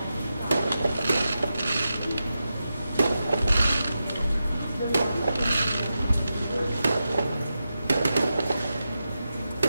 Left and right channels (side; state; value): both; inverted; correlation -0.90